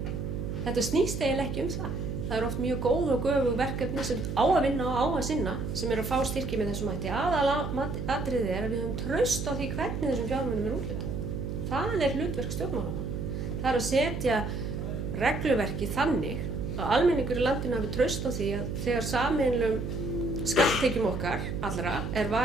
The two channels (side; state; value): right; noise; hum, 4 dB below the sound